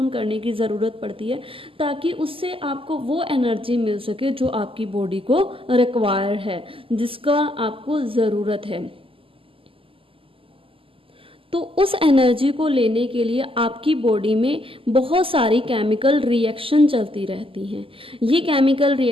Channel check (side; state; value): left; late; 0.26 ms